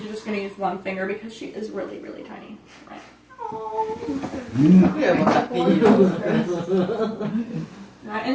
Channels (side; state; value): both; identical; correlation 1.00